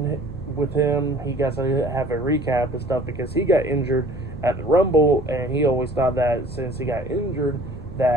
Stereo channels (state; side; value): noise; right; hum, 20 dB below the sound